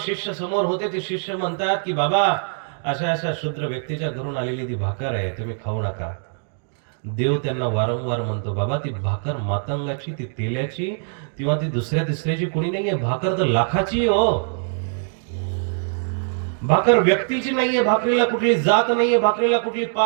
समोर होते, ते शिष्य म्हणतात की बाबा, अशा अशा क्षुद्र व्यक्तीच्या घरून आलेली ती भाकर आहे, तुम्ही खाऊ नका. देव त्यांना वारंवार म्हणतो, बाबा ती भाकर मातंगाची, ती तेल्याची किंवा ती दुसऱ्या तिसऱ्याची कोणी नाहीये, भाकर तर लाखाची हो. भाकर व्यक्तीची नाहीये, भाकरीला कुठली जात नाहीये, भाकरीला कुठली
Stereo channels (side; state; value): left; silent; digital silence